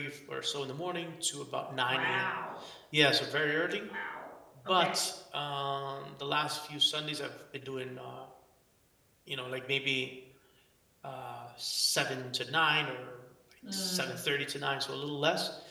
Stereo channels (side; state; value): both; identical; correlation 1.00